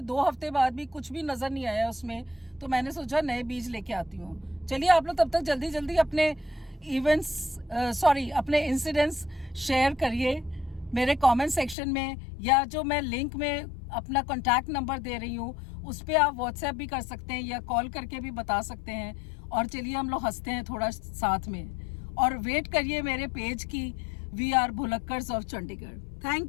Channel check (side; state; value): right; drops out; at 11.8 s